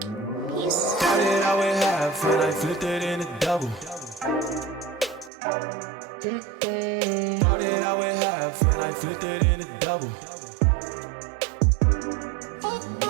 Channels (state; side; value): drops out; left; at 5.3 s